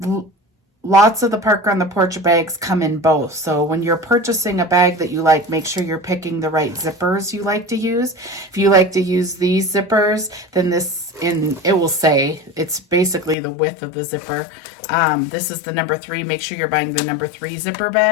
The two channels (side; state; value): right; drops out; at 13.4 s